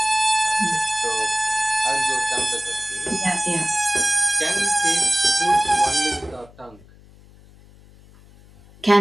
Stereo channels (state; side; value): noise; left; hum, 25 dB below the sound